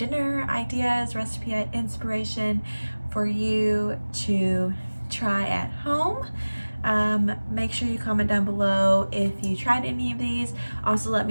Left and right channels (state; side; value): inverted; both; correlation -1.00